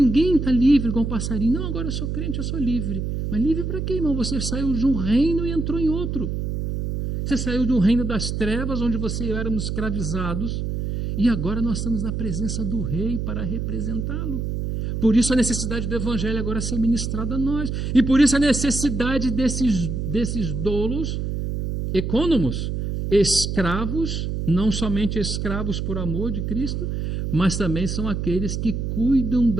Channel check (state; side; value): noise; right; hum, 2 dB below the sound